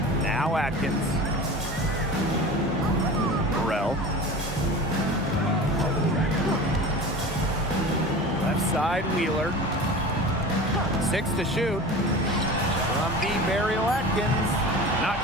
Now Atkins. Burrell. Left side, Wheeler. 6 to shoot. From B. Burial Atkins.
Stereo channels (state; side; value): normal; both; correlation 0.34